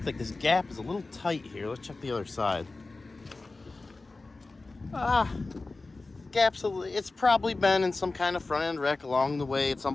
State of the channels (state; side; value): quieter; right; 3.5 dB